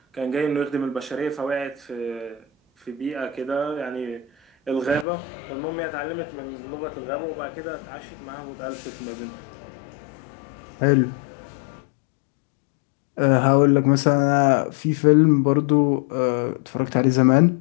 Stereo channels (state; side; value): drops out; right; at 5.1 s